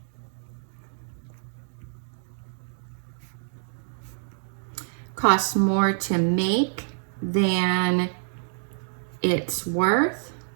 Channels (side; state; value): left; silent; digital silence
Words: Costs more to make than it's worth.